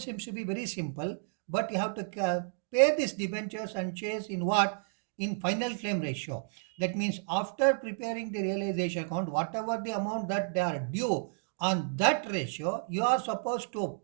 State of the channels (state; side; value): silent; left; digital silence